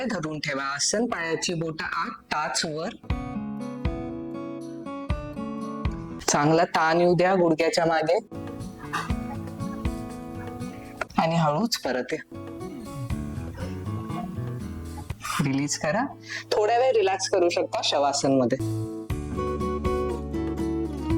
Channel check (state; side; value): identical; both; correlation 1.00